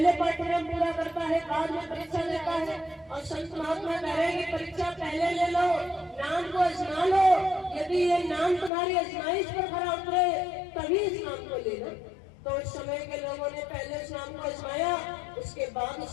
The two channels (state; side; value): drops out; right; at 8.7 s